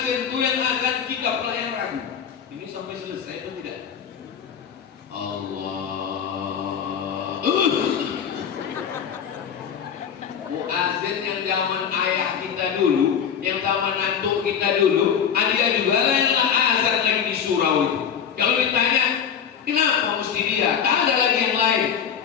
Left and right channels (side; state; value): right; quieter; 7.8 dB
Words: itu yang azan kita pelayan ragu. Ini sampai selesai atau tidak? Allah. Muazin yang zaman ayah kita dulu, yang zaman antuk kita dulu, dia juga lah yang azan lagi di surau itu. Kalau ditanya, kenapa mesti dia? Tak ada lagi yang lain.